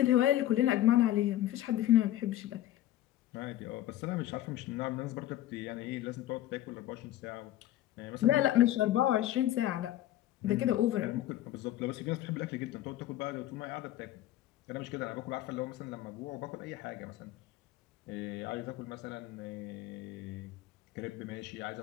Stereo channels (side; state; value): right; quieter; 13.6 dB